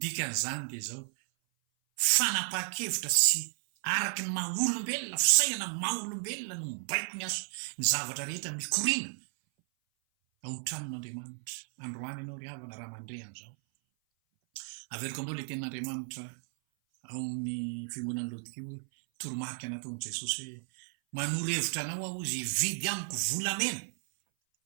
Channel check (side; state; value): left; silent; 56 dB below the other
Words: dikan'izany dia zao fanapa-kevitra sy araky ny maha-olombelona fisainana maha-olombelona no mibaiko ny aso ny zavatra rehetra mikorina ao ny-tranon'andriamanitra androany ianao ry havana raha mandre an'izao averiko aminao le tenin'andriamanitra ao amin'ny fiangonan'ny laodikio toromarika nataon'i jesosy hoe manoro-hevitra anao aho izy vidy amiko volamena